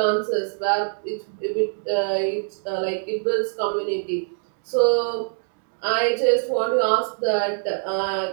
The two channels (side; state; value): left; silent; digital silence